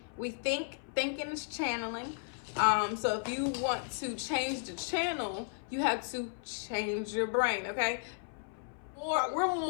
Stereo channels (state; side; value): silent; right; 55 dB below the other